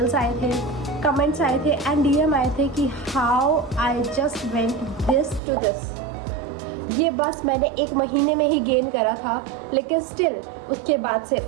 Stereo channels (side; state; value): left; drops out; at 5.4 s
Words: आए थे, कमेंट्स आए थे एंड DM आए थे कि how I just went this to this. ये बस मैंने 1 महीने में ही गेन करा था, लेकिन स्टिल उसके बाद से